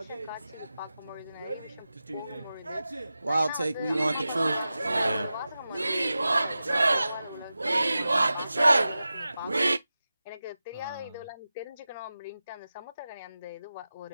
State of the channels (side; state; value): both; inverted; correlation -0.93